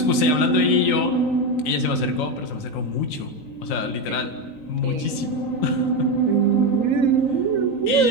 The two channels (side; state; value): right; late; 3.9 ms